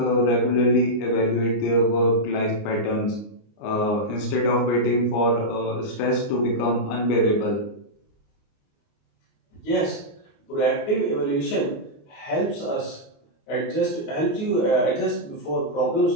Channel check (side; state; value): right; late; 29 ms